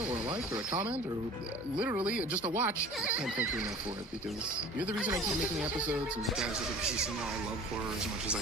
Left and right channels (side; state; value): both; normal; correlation 0.43